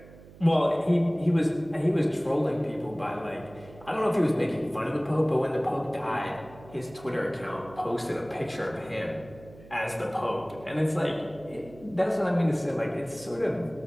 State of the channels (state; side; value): noise; right; hum, 20 dB below the sound